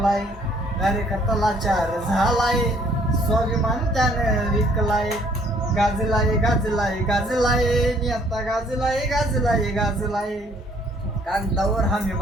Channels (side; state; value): both; normal; correlation 0.61